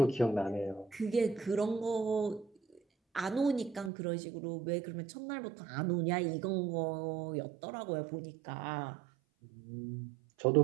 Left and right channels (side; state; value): left; drops out; at 3.9 s